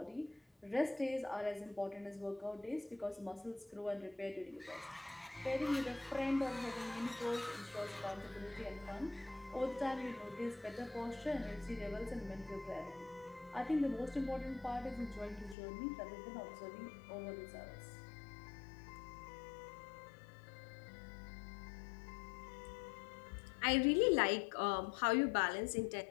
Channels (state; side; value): drops out; right; at 15.6 s